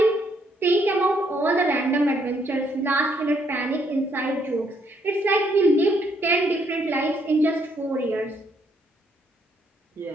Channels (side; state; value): both; normal; correlation 0.71